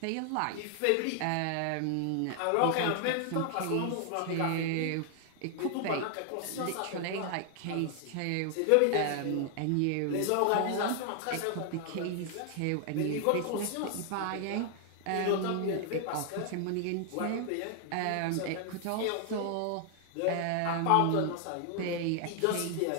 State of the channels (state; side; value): different; both; correlation 0.00